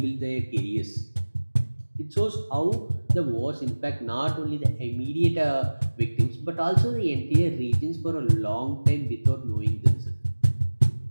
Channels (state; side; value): inverted; both; correlation -1.00